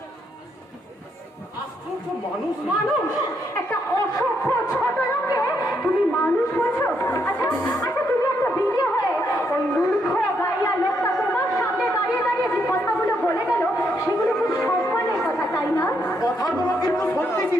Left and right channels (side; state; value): both; normal; correlation 0.77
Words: আশ্চর্য মানুষ। মানুষ, একটা অসভ্য ছোট লোককে তুমি মানুষ বলছো? আচ্ছা আচ্ছা, তুমি একটা বিয়ে হয়ে ওই মূর্খ গাইয়া লোকটা তোমার সামনে দাঁড়িয়ে দাঁড়িয়ে যে কথাগুলো বলে গেল, সেগুলো খুব সম্মানের কথা, তাই না? কথাগুলো কিন্তু সত্যি